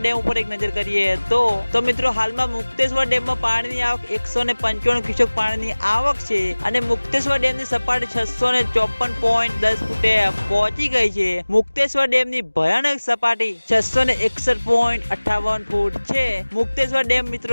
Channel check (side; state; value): both; inverted; correlation -1.00